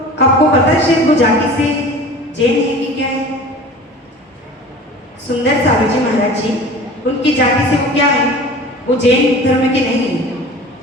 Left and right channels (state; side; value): normal; both; correlation 0.40